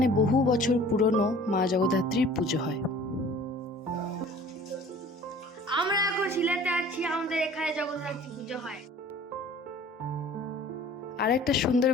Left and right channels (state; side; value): normal; both; correlation 0.48